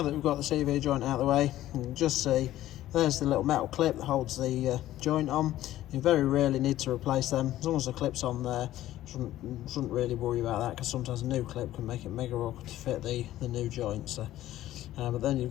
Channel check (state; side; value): quieter; right; 14.1 dB